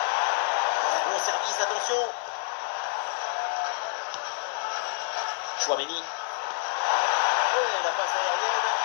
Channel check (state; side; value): silent; right; 60 dB below the other